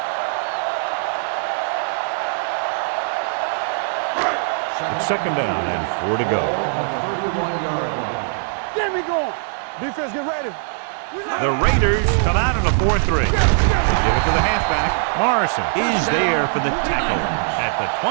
It's 2nd down and 4 to go. Get me going. Defense, get ready. The Raiders come out in a 4-3. They give it to the halfback. Morrison is there for the tackle at the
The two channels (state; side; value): silent; left; digital silence